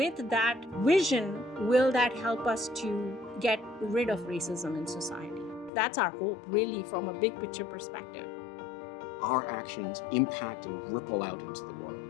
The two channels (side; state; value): right; drops out; at 5.7 s